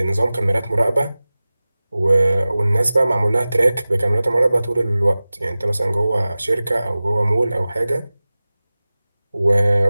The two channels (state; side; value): inverted; both; correlation -0.97